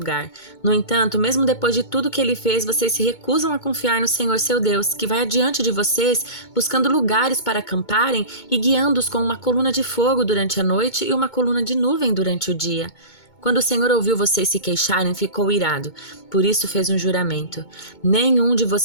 No entanto, mesmo depois de tudo que ele fez, vocês se recusam a confiar no Senhor seu Deus, que vai adiante de vocês, buscando lugares para acamparem e guiando-os com uma coluna de fogo durante a noite e uma coluna de nuvem durante o dia. Quando o Senhor ouviu vocês se queixarem, ficou irado. Por isso fez um juramento: nenhum de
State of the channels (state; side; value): late; right; 2.2 ms